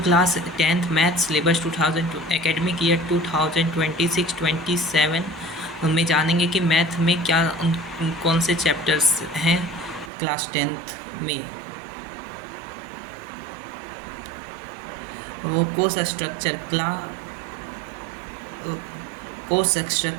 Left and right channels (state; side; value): drops out; left; at 10.1 s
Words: class 10th math syllabus 2000 academic year 2026-27 में जानेंगे कि मैथ में क्या कौन से चैप्टर्स हैं क्लास 10th में। वो कोर्स स्ट्रक्चर